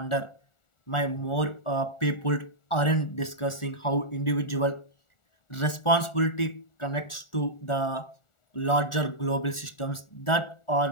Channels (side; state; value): right; late; 1.4 ms